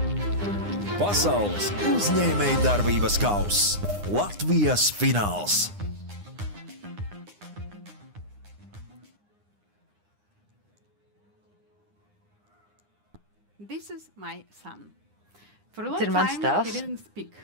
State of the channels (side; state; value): left; late; 9.8 ms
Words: Pasaules uzņēmējdarbības kauss Latvijas fināls. This is my son. For a long time he didn't speak.